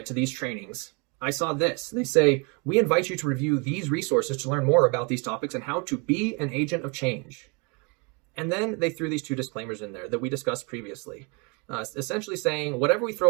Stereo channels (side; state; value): left; quieter; 31.3 dB